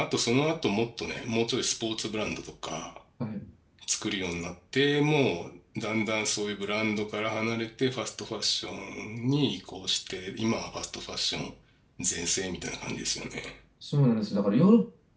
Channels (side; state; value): both; identical; correlation 1.00